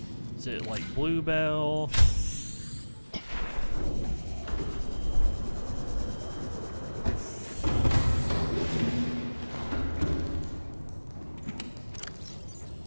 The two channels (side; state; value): both; inverted; correlation -1.00